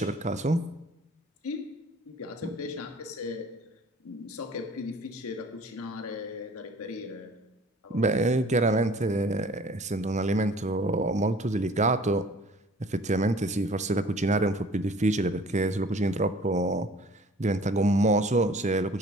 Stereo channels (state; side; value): normal; both; correlation 0.50